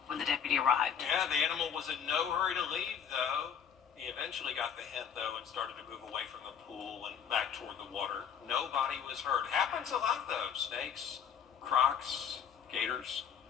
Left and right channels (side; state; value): right; quieter; 7.9 dB